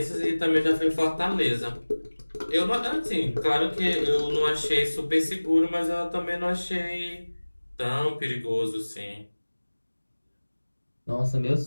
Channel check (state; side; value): inverted; both; correlation -1.00